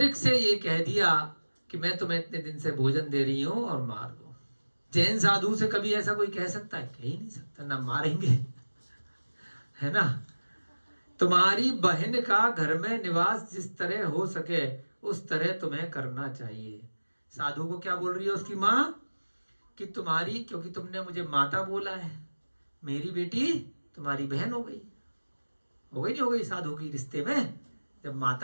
से ये कह दिया कि मैं तुम्हें इतने दिन से भोजन दे रही हूं और मार दो। जैन साधु से कभी ऐसा कोई कह सकता है? कह ही नहीं सकता, ना मारेंगे, है ना। तुम्हारी बहन का घर में निवास जिस तरह हो सके उस तरह तुम्हें करना चाहिए। साधु को क्या बोल रही है उसकी माँ कि तुम्हारी, क्योंकि तुमने मुझे माता बोला है, मेरी बेटी तुम्हारी बहन हो गई। हो गई नहीं हो गई? साधु की रिश्ते में जब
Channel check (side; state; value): both; inverted; correlation -1.00